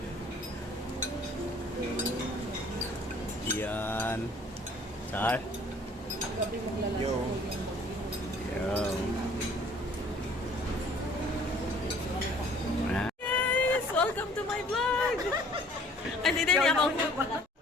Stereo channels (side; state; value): both; normal; correlation 0.55